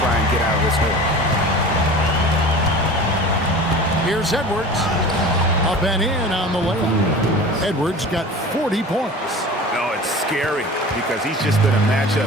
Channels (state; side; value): normal; both; correlation 0.37